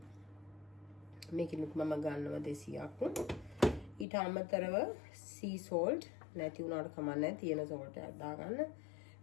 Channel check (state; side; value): drops out; right; at 4.0 s